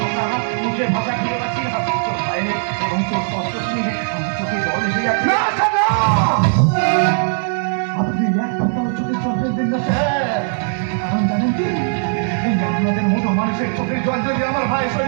মুখের ভাষা খুঁজে পাচ্ছি না। তোর ভাইয়ের এবং তোর কষ্ট শুনে আমার চোখে জল এসে যাচ্ছে। আপনি এক কথাও চোখে জল ফেলবেন না স্যার, কারণ জানেন কি, এই আপনাদের মতো মানুষের চোখের জল যদি আমার ভাইয়ের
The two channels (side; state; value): left; silent; digital silence